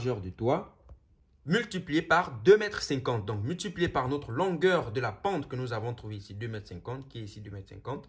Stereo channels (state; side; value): identical; both; correlation 1.00